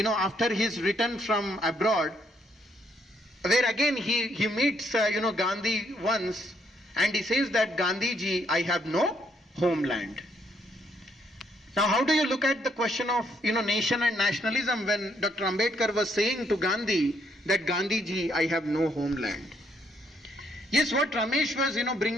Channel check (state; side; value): normal; both; correlation 0.72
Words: his return from abroad, where again he meets, Gandhi once, and he says that Gandhiji, I have no homeland. Now how do you look at the question of, nation and nationalism when Dr. Ambedkar was saying to Gandhi that Gandhiji, I have no homeland? Yes, what Ramesh was,